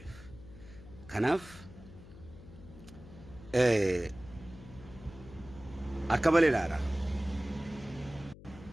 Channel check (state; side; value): noise; left; hum, 17 dB below the sound